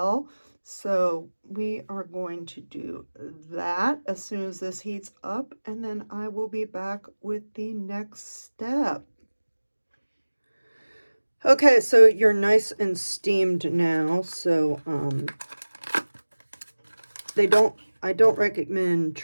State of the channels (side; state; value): both; inverted; correlation -1.00